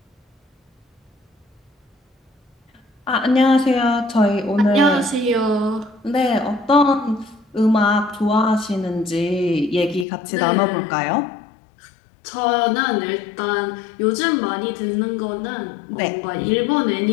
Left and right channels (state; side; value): drops out; right; at 10.1 s